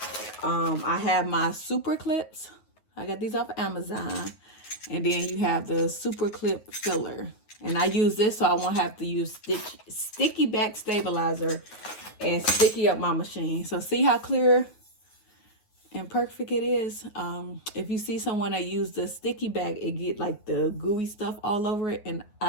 I have my super clips. I got these off of Amazon. And then you have the super clip filler. And I use this so I won't have to use sticky back stabilizer and sticky up my machine. So see how clear and perfect it is. If you see someone that use the sticky back, it get like the gooey stuff all over it. And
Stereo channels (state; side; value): late; right; 9.5 ms